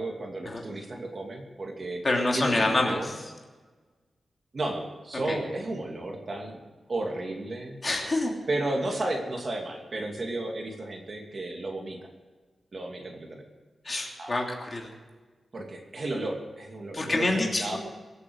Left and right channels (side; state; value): both; normal; correlation 0.91